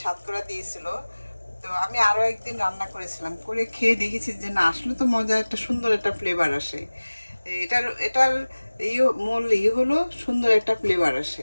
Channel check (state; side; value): inverted; both; correlation -1.00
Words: সাতকরা দিয়েছিল, তো আমি আরও একদিন রান্না করেছিলাম, করে খেয়ে দেখেছি যে না আসলে তো মজা, একটা সুন্দর একটা ফ্লেভার আসে। এটার এটার মূল হলো সুন্দর একটা ফ্লেভার